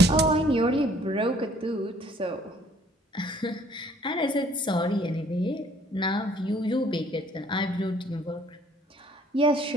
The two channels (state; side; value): normal; both; correlation 0.59